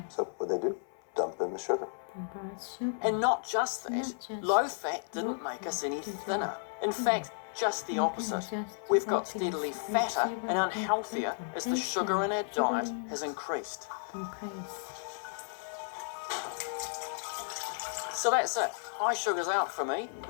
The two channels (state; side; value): silent; right; 56 dB below the other